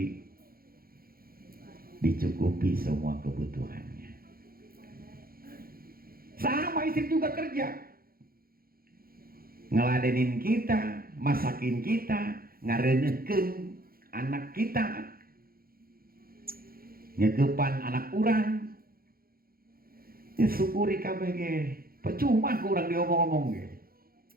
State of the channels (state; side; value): late; left; 0.43 ms